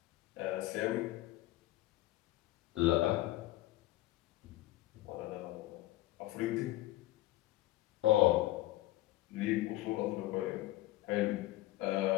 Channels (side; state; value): right; quieter; 16.5 dB